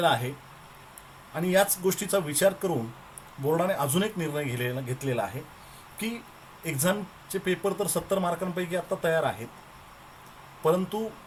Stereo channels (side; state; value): both; identical; correlation 1.00